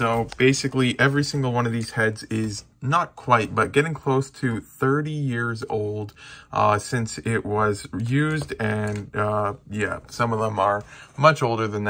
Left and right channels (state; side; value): identical; both; correlation 1.00